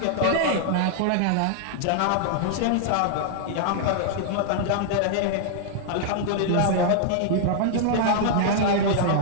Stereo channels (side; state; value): both; different; correlation -0.01